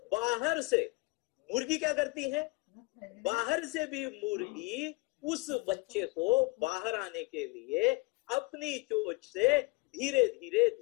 बाहर से मुर्गी क्या करती है? बाहर से भी मुर्गी उस बच्चे को बाहर आने के लिए अपनी चोंच से धीरे धीरे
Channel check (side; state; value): right; quieter; 25.8 dB